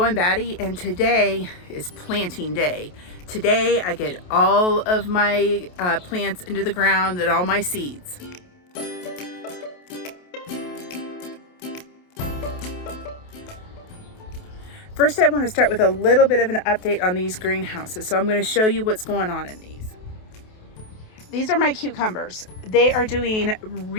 Batty, and today is planting day. Today, I get all of my plants into the ground and all my seeds. First, I want to start with a little bit of an update on these greenhouses. So I'm going to show you what's going on in these. These are my cucumbers. They are doing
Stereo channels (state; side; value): late; right; 28 ms